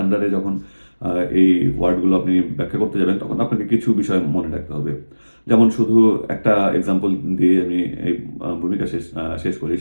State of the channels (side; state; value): both; inverted; correlation -1.00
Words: আন্ডারে যখন এই ওয়ার্ডগুলো আপনি ব্যাখ্যা করতে যাবেন, তখন আপনাকে কিছু বিষয় মনে রাখতে হবে। যেমন শুধু একটা এক্সাম্পল দিয়ে আমি এই ভূমিকা শেষ করি।